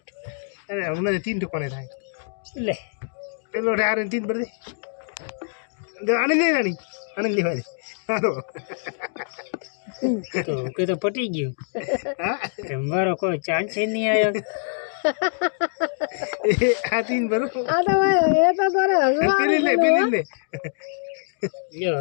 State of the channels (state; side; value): silent; right; digital silence